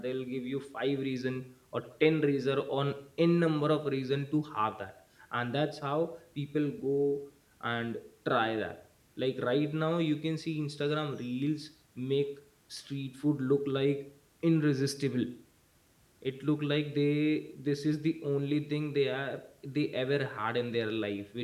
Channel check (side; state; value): both; identical; correlation 1.00